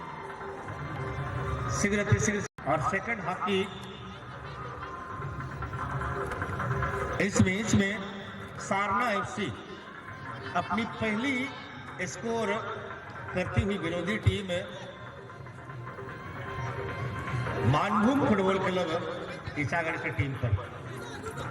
शीघ्र से शीघ्र। और सेकंड हाफ की इस मैच में सारना एफसी अपनी पहली स्कोर करती हुई विरोधी team Manbhum football club Isagarh की टीम पर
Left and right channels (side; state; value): both; identical; correlation 1.00